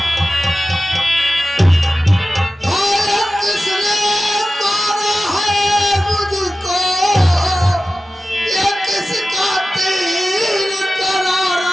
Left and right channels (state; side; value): normal; both; correlation 0.94